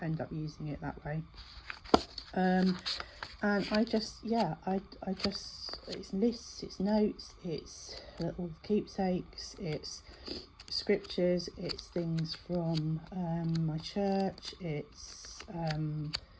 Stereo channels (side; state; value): both; identical; correlation 1.00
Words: end up using it that way. And I just, yeah, I just, it's lists, it's notes, it's little keepsakes, it's scriptures, it's things from my church, it's